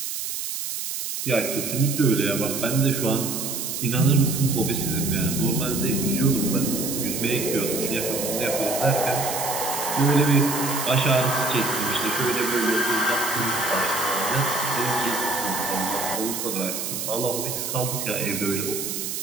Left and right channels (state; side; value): noise; right; hiss, 4 dB below the sound